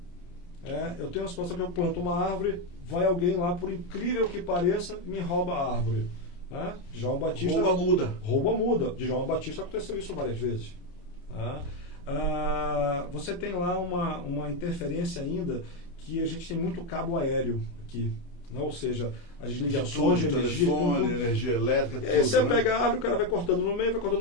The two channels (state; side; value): late; right; 29 ms